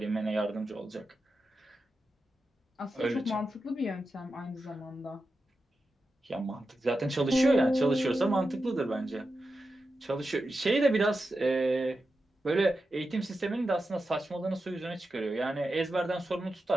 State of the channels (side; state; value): both; normal; correlation 0.90